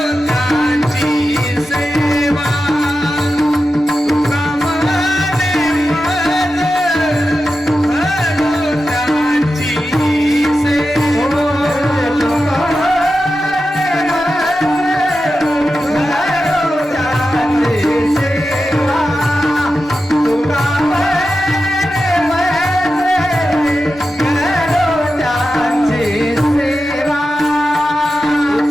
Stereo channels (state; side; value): normal; both; correlation 0.91